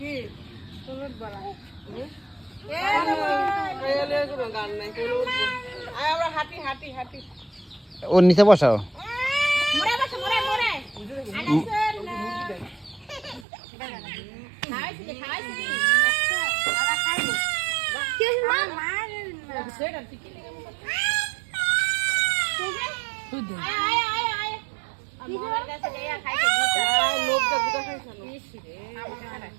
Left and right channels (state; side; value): drops out; left; at 13.5 s